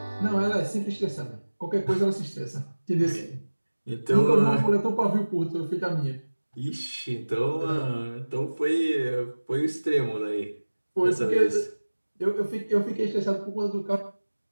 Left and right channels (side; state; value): both; inverted; correlation -1.00